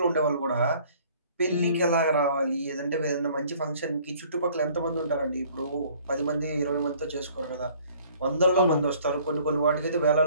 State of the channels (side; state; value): both; inverted; correlation -0.55